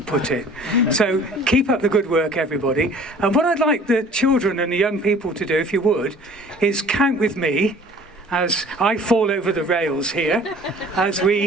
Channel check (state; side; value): normal; both; correlation 0.49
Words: put it. So keep up the good work, everybody. And what I'd like the children and the young people to do, if you would, is count with me as I fall over the rails here, as